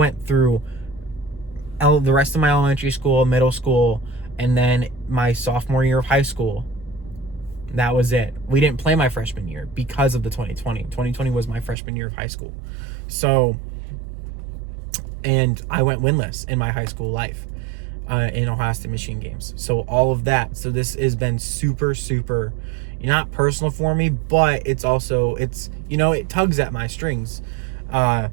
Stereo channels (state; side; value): drops out; left; at 11.8 s